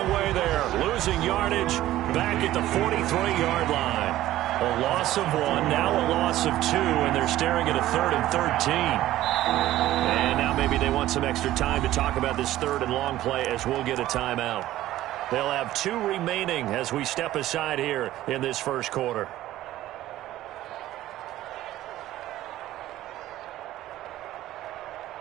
way there. Losing yardage back at the 43-yard line. A loss of 1, now a loss of 2, and they're staring at a 3rd and 13. And now maybe they want some extra time to talk about this 3rd and long play as we'll get a timeout. They'll have 2 remaining as we step aside here in this first quarter.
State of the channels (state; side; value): quieter; left; 14.6 dB